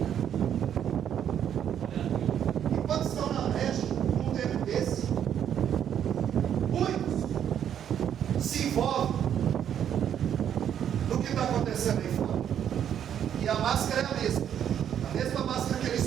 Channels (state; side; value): quieter; left; 9.4 dB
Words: Enquanto estão na brecha, num tempo desse, muitos se envolvem no que está acontecendo aí fora. E a máscara é a mesma. A mesma máscara que